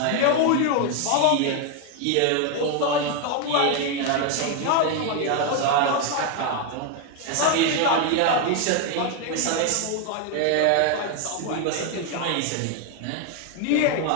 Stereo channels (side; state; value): both; different; correlation 0.01